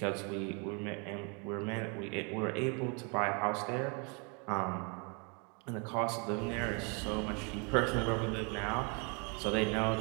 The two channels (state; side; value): quieter; left; 34.2 dB